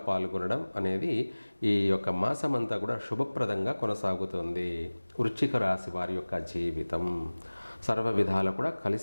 అనేది ఈ యొక్క మాసమంతా కూడా శుభప్రదంగా కొనసాగుతుంది. వృశ్చిక రాశి వారి యొక్క జీవితం సర్వ విధాలు కూడా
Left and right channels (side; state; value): both; inverted; correlation -1.00